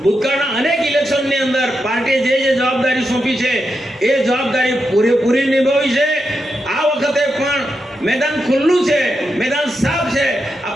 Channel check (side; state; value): both; normal; correlation 0.86